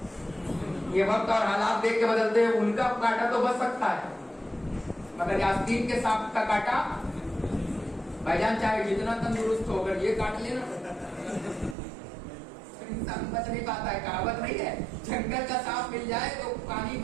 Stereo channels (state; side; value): drops out; left; at 11.8 s